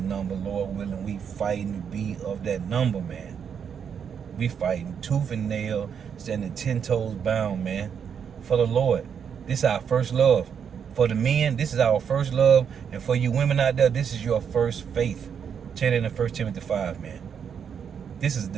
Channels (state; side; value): quieter; left; 7.5 dB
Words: number. Lord willing, we fighting to be of that number, man. We fighting tooth and nail, standing 10 toes bound, man, for the Lord. This is our first love. For the men, this is our first love. And for you women out there, this is your first faith. Check it in 1 Timothy 5, man. This is the